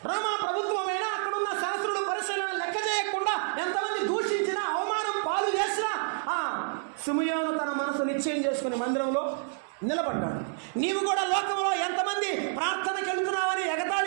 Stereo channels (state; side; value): silent; left; digital silence